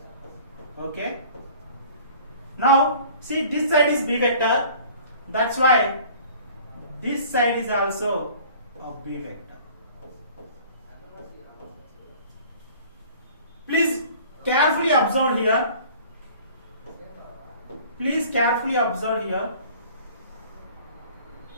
Okay. Now see, this side is B vector, that's why this side is also a B vector. Please carefully observe here. This side is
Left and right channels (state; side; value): inverted; both; correlation -0.48